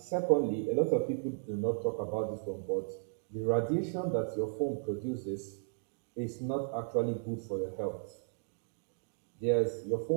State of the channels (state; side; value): silent; left; digital silence